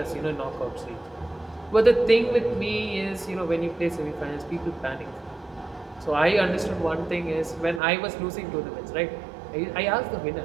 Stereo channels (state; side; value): drops out; left; at 7.8 s